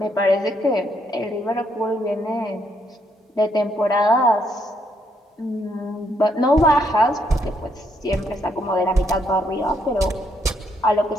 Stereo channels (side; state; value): both; normal; correlation 0.74